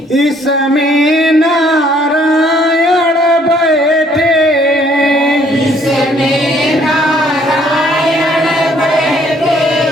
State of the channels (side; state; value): both; normal; correlation 0.63